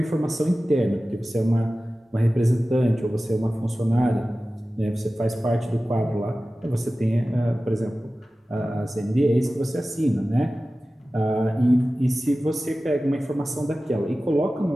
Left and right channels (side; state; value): both; normal; correlation 0.96